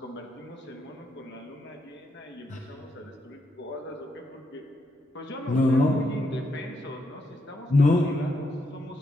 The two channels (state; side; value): normal; both; correlation 0.79